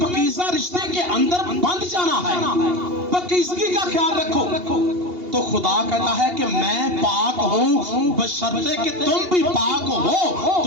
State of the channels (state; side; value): late; left; 2.8 ms